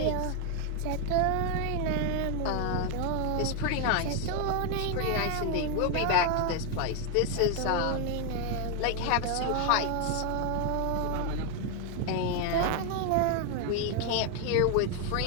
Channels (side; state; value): both; different; correlation 0.01